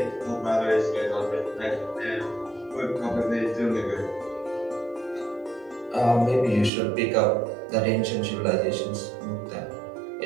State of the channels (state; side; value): drops out; left; at 6.7 s